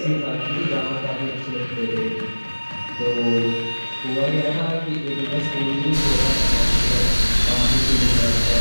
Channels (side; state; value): both; inverted; correlation -1.00